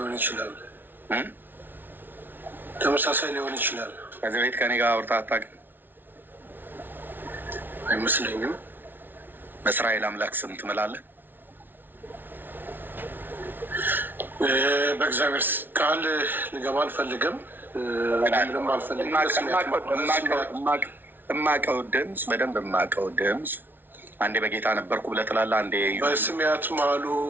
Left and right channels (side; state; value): left; late; 0.095 ms